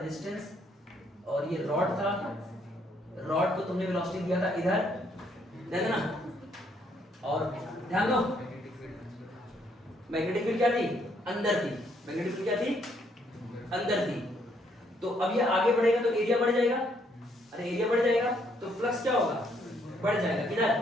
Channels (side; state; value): both; normal; correlation 0.70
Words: और ये रॉड था, रॉड को तुमने वेलोसिटी दिया था इधर, है ना। और ध्यान दो मैग्नेटिक फील्ड क्या थी अंदर थी, मैग्नेटिक फील्ड क्या थी अंदर थी। तो अब ये आगे बढ़ेगा तो एरिया बढ़ जाएगा, अरे एरिया बढ़ जाएगा तो फ्लक्स क्या होगा बढ़ जाएगा किधर